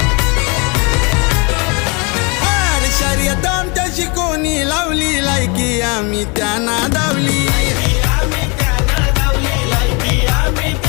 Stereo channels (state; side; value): quieter; right; 31.1 dB